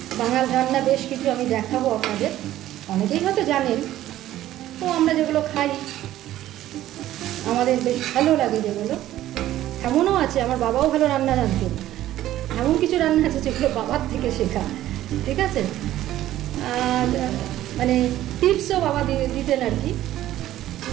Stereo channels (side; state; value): left; quieter; 13.7 dB